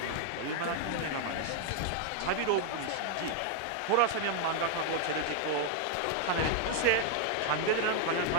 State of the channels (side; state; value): both; different; correlation 0.00